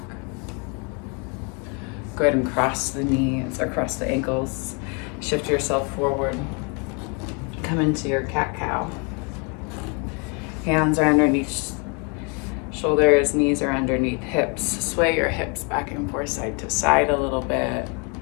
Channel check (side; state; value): right; quieter; 34.3 dB